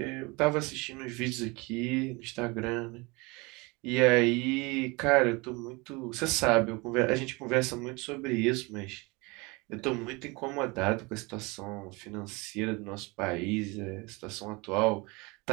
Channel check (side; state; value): left; quieter; 26.2 dB